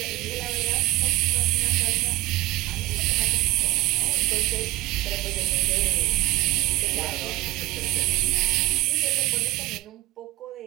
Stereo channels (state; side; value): quieter; left; 18.1 dB